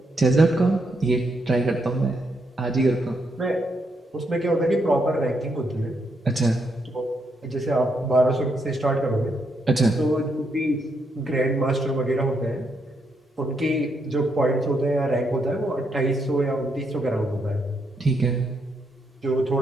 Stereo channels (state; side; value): normal; both; correlation 0.78